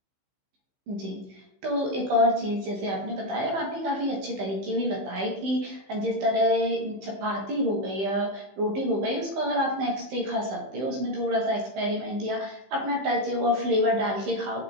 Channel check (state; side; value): late; left; 15 ms